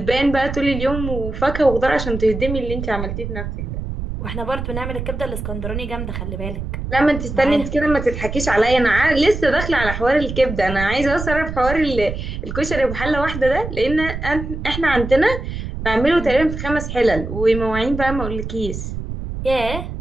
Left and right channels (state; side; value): noise; right; rumble, 6 dB below the sound